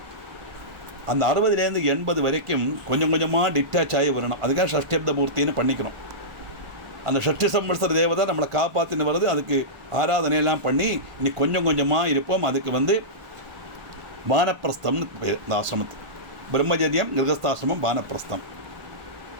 அந்த 60லேருந்து 80 வரைக்கும் கொஞ்சம் கொஞ்சமாக டிட்டாச் ஆகி வரணும். அதுக்காக ஷஷ்டிப்த பூர்த்தின்னு பண்ணிக்கணும். அந்த ஷஷ்டி சம்வத்சர தேவதை நம்மளை காப்பாற்றின்னு வருது. அதுக்கு ஆராதனையெல்லாம் பண்ணி இனி கொஞ்சம் கொஞ்சமாக இருப்போம். அதுக்கு வானப்பிரஸ்தம்னு இந்த ஆசிரமத்துக்கு பிரம்மச்சரியம், கிரகஸ்தாசிரமம், வானப்பிரஸ்தம்.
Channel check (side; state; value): left; late; 1.1 ms